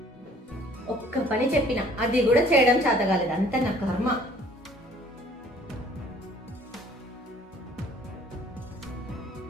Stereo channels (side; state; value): both; normal; correlation 0.56